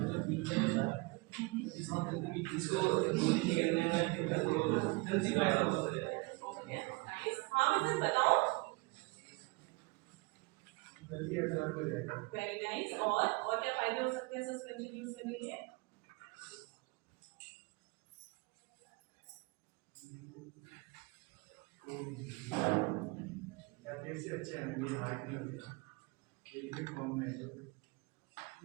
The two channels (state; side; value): quieter; left; 26.4 dB